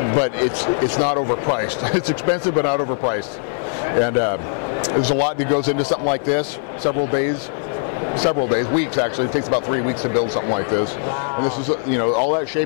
but it's not overpriced. It's expensive, but not overpriced. And there's a lot that goes into something like this. Several days, weeks actually. It takes about 3 weeks to build something like this. Wow. And this is, all that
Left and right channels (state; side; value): silent; right; 62 dB below the other